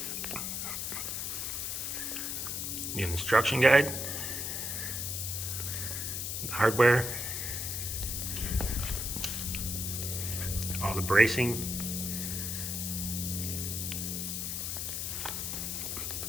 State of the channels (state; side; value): noise; left; hiss, 2 dB below the sound